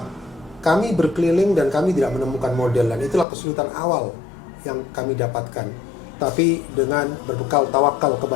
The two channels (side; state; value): right; drops out; at 3.2 s